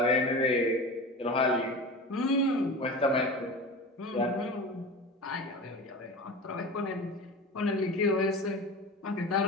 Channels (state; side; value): normal; both; correlation 0.31